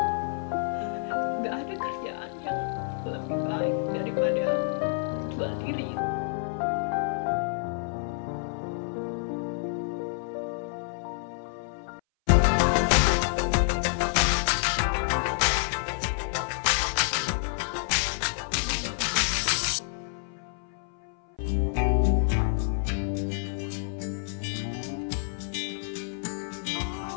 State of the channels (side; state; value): right; silent; 59 dB below the other